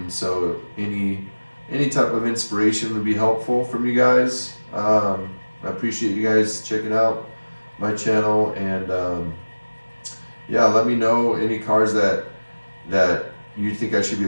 So any type of inspiration would be helpful from you guys. I appreciate you guys checking out my channel, and yeah, let me know any cars that you think I should be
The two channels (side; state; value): both; inverted; correlation -1.00